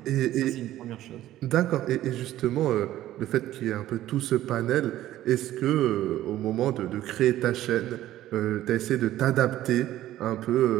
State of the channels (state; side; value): quieter; left; 13.9 dB